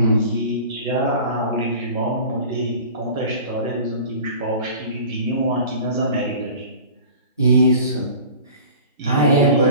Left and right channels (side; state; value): both; inverted; correlation -0.41